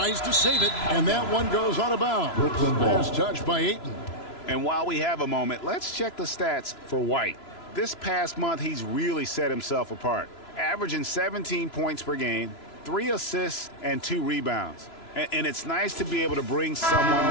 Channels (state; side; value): late; right; 3.0 ms